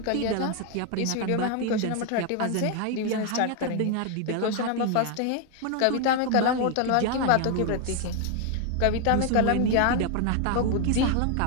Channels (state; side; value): different; both; correlation 0.01